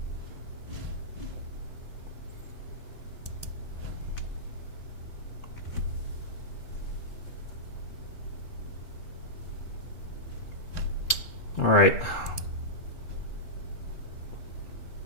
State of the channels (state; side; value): late; right; 3.7 ms